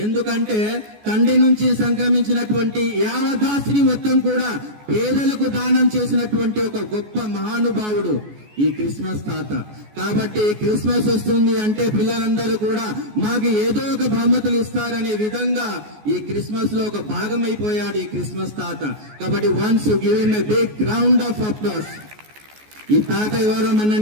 ఎందుకంటే తండ్రి నుంచి సంక్రమించినటువంటి యావదాస్తిని మొత్తం కూడా పేదలకు దానం చేసినటువంటి ఒక గొప్ప మహానుభావుడు ఈ క్రిస్మస్ తాత. కాబట్టి క్రిస్మస్ వస్తుంది అంటే పిల్లలందరూ కూడా మాకు ఏదో ఒక బహుమతులు ఇస్తారనే విధంగా ఈ క్రిస్మస్ లో ఒక భాగమైపోయాడు ఈ క్రిస్మస్ తాత. కాబట్టి once give him a big round of applause. ఈ తాత ఎవరో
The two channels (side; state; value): left; late; 14 ms